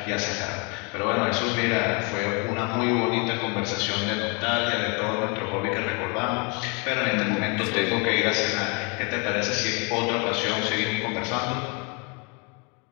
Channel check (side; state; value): right; quieter; 32.6 dB